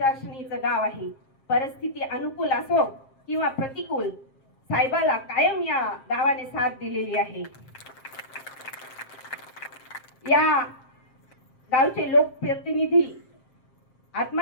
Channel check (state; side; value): late; right; 7.5 ms